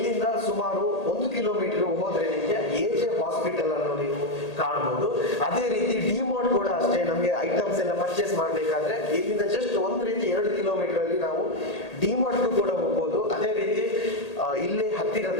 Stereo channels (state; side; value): late; right; 1.8 ms